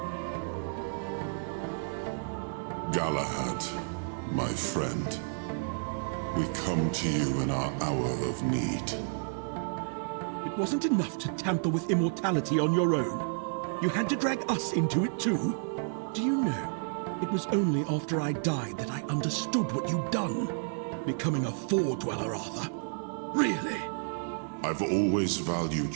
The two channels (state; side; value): silent; left; digital silence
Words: Galahad, my friend. We come to you in our hour of need. It wasn't enough to tamper with immortality on your own. You had to drag us into it too. Do you know, it was only after I died that I understood what you'd done. Becoming a Four-Dweller, Arthur. Really? I've always valued